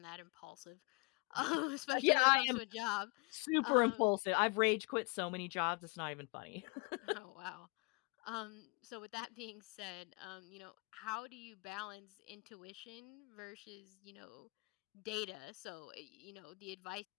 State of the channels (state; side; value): quieter; right; 29.6 dB